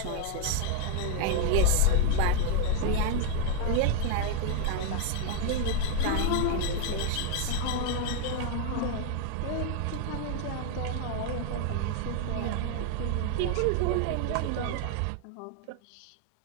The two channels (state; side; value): different; both; correlation 0.00